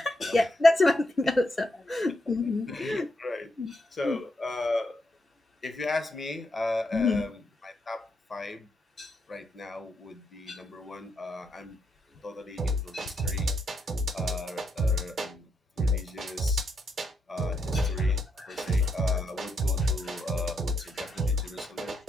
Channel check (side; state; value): both; normal; correlation 0.80